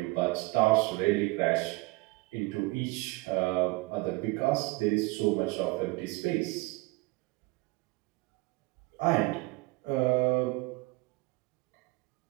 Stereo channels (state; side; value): quieter; left; 24.0 dB